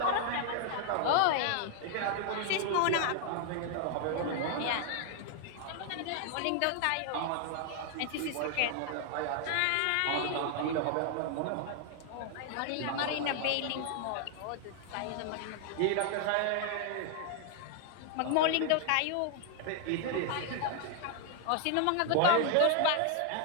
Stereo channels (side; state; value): both; different; correlation 0.00